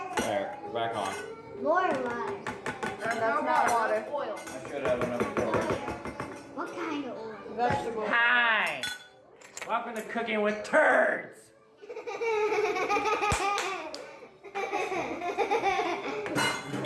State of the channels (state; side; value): identical; both; correlation 1.00